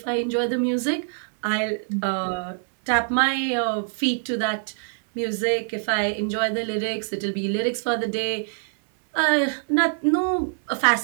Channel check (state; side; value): silent; left; 61 dB below the other